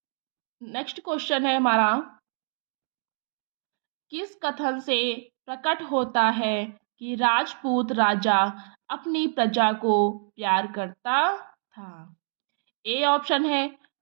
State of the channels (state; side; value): silent; left; digital silence